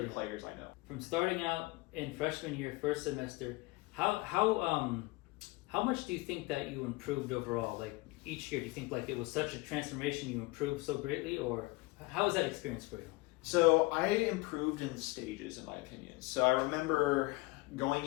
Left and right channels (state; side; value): quieter; right; 22.7 dB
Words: players I know. From starting out in freshman year, first semester, how much do you think that you improved overall? Each year, do you think it was such a transformation, you improved so greatly, or how was that experience for you? So I improved in stages, in my opinion. So I remember going